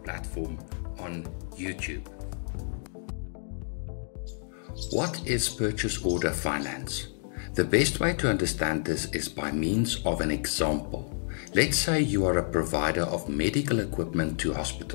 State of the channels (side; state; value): right; silent; 58 dB below the other